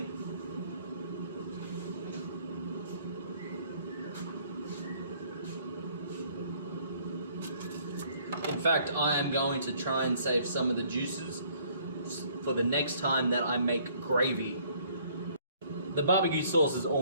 In fact, I am going to try and save some of the juices for the next time that I make gravy. The barbecue sauce is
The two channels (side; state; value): both; inverted; correlation -0.61